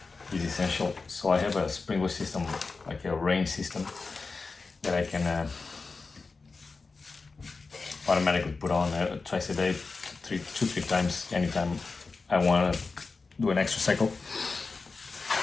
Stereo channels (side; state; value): right; quieter; 4.2 dB